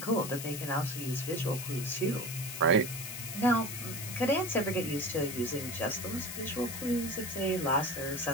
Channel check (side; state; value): left; noise; hiss, 7 dB below the sound